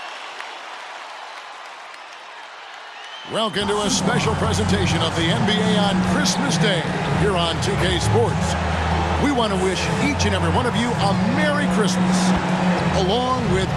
Welcome to a special presentation of the NBA on Christmas Day here on 2K Sports. We want to wish each and every one of you a Merry Christmas. Along with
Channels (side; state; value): both; identical; correlation 1.00